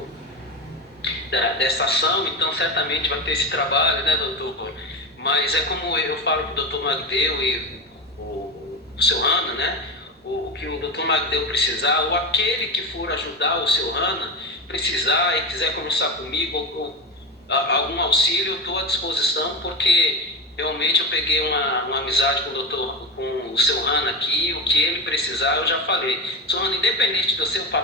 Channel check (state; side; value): normal; both; correlation 0.20